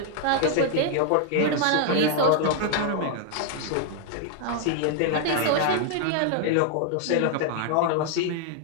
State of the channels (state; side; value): different; both; correlation 0.00